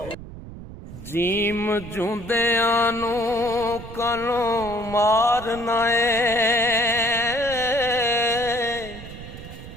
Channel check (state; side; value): noise; right; rumble, 13 dB below the sound